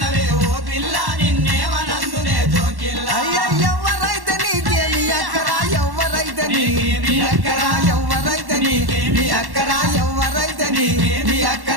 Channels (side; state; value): left; late; 1.1 ms